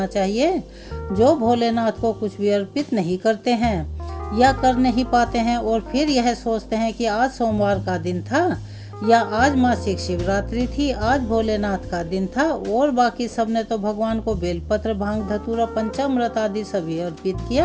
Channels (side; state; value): both; identical; correlation 1.00